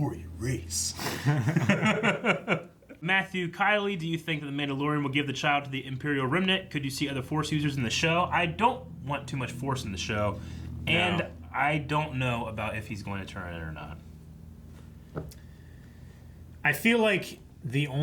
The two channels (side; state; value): both; identical; correlation 1.00